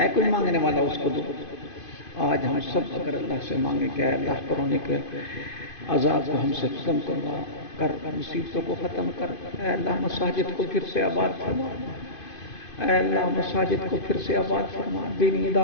کوئی مانگنے والا اس کو دو. آج ہم سب اگر اللہ سے مانگیں کہ اے اللہ کرونے کے عذاب کو ہم سے ختم کروا کر، مصیبتوں کو ختم کر، اے اللہ مساجد کو پھر سے آباد فرما، اے اللہ مساجد کو پھر سے آباد فرما، دینی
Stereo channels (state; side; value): late; right; 2.5 ms